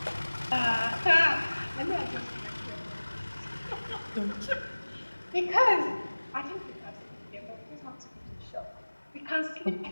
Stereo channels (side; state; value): both; inverted; correlation -1.00